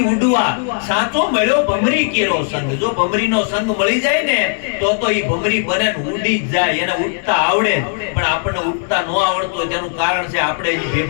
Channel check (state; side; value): silent; right; 68 dB below the other